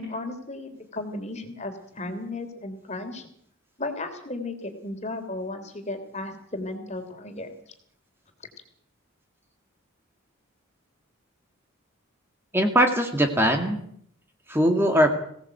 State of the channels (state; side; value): normal; both; correlation 0.54